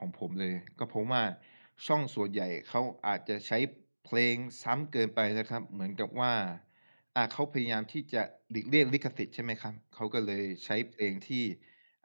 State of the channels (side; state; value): both; inverted; correlation -1.00